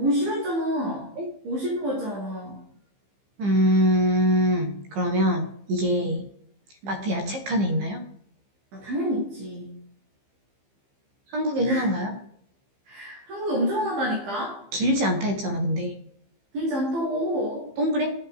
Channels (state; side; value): late; left; 15 ms